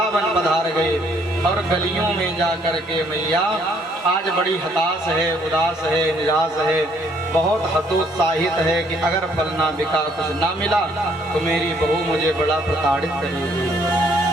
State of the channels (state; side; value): normal; both; correlation 0.66